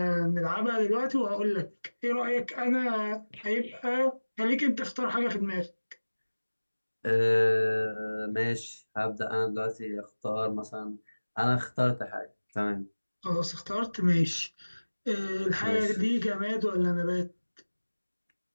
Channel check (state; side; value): inverted; both; correlation -1.00